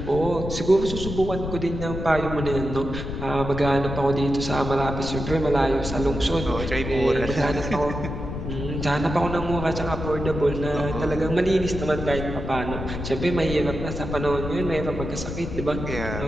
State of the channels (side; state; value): left; noise; rumble, 6 dB below the sound